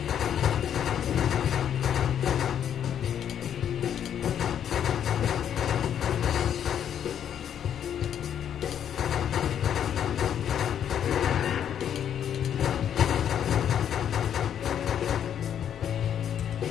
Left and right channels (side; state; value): right; quieter; 9.3 dB